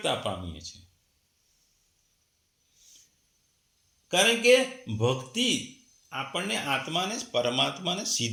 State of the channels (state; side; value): identical; both; correlation 1.00